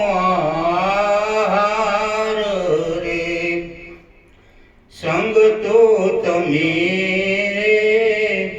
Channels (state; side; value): identical; both; correlation 1.00